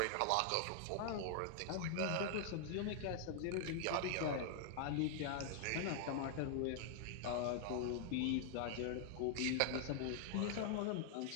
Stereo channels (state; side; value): different; both; correlation -0.01